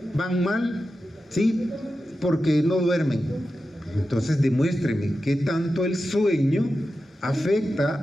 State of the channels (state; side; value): normal; both; correlation 0.91